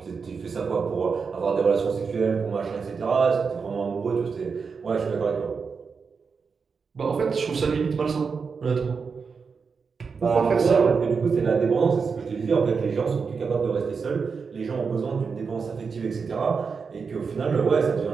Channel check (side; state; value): left; quieter; 5.4 dB